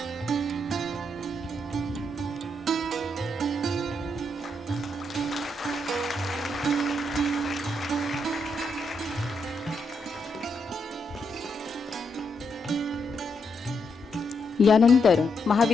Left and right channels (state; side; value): normal; both; correlation 0.79